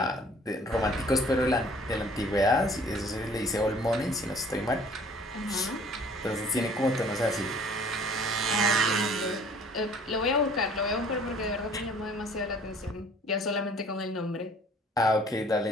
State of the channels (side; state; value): both; normal; correlation 0.53